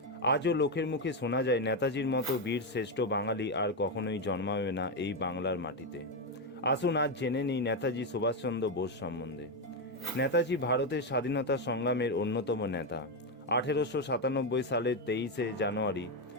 আজও লোকের মুখে শোনা যায় নেতাজির মতো বীর শ্রেষ্ঠ বাঙালি আর কখনোই জন্মাবে না এই বাংলার মাটিতে। আসুন আজ জেনে নিই নেতাজি সুভাষচন্দ্র বোস সম্বন্ধে। নেতাজি ভারতের স্বাধীনতা সংগ্রামের অন্যতম নেতা। 1897 সালের 23শে জানুয়ারি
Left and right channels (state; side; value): normal; both; correlation 0.07